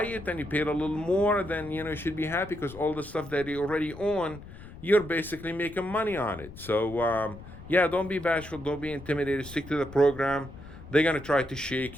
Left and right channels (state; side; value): noise; left; rumble, 16 dB below the sound